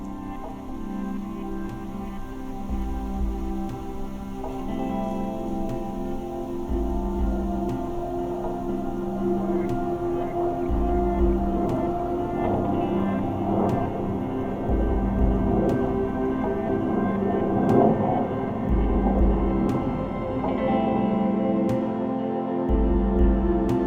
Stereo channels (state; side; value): identical; both; correlation 1.00